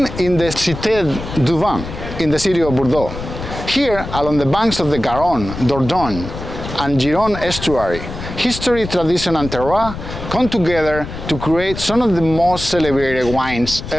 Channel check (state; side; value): noise; left; rumble, 9 dB below the sound